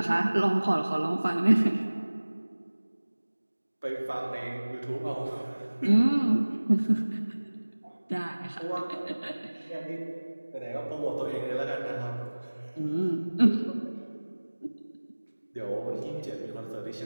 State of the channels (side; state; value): both; inverted; correlation -1.00